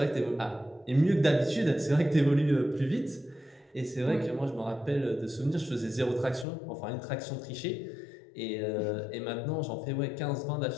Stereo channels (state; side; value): drops out; right; at 6.5 s